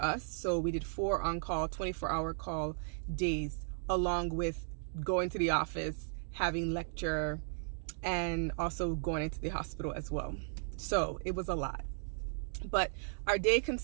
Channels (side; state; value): left; silent; digital silence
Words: us. So we did 4 on-call, 24-hour call days, along with going to the office, having lecture, and also going into the hospital as well. So it was a lot. But our day